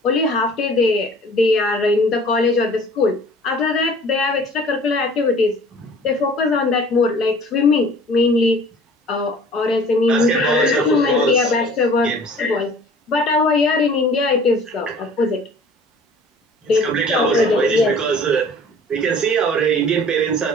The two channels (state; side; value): normal; both; correlation 0.48